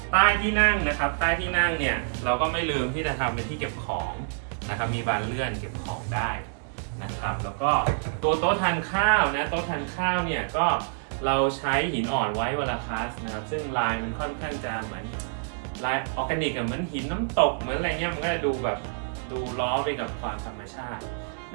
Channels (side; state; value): left; silent; digital silence